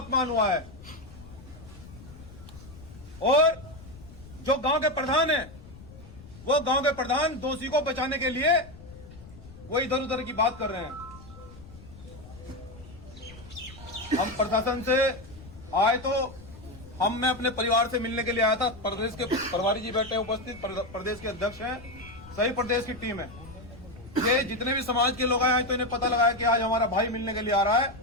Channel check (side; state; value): left; noise; rumble, 18 dB below the sound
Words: हुआ है। और जो गांव के प्रधान है, वो गांव के प्रधान दोषी को बचाने के लिए वो इधर उधर की बात कर रहे हैं। हम प्रशासन से आए तो मैं अपने परिवार से मिलने के लिए आया था। प्रदेश के प्रभारी जी बैठे हैं उपस्थित, प्रदेश के अध्यक्ष हैं, सही प्रदेश की टीम है। ये जितने भी समाज के लोग आए तो इन्हें पता लगा कि आज हमारा भाई मिलने के लिए आ रहा है।